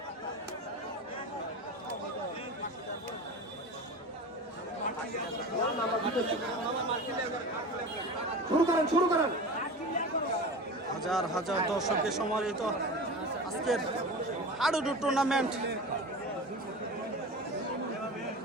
শুরু করেন। হাজার হাজার দর্শকের সমাহিত আজকের হাডুডু টুর্নামেন্ট।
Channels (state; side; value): normal; both; correlation 0.31